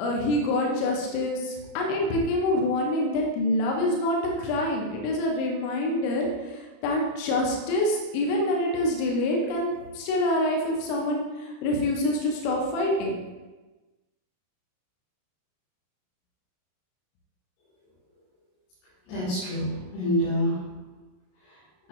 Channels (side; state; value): right; late; 33 ms